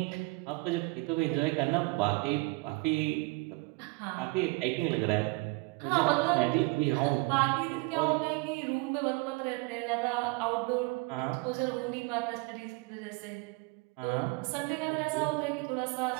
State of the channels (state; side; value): quieter; left; 26.2 dB